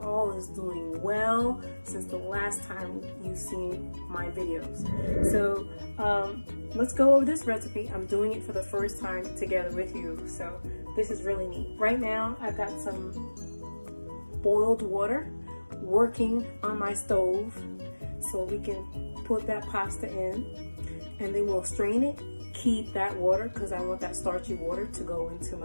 is doing well since the last time you've seen my videos. So let's go over this recipe. I'm doing it for the first time together with you, so this is really neat. Right now I've got some boiled water working on my stove so we can put that pasta in, and then we'll strain it. Keep that water because I want that starchy water to go into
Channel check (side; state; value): both; inverted; correlation -1.00